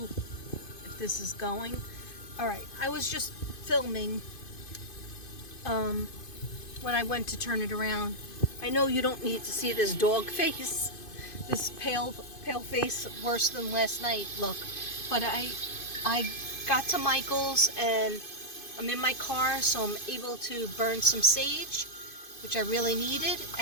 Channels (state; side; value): late; right; 2.5 ms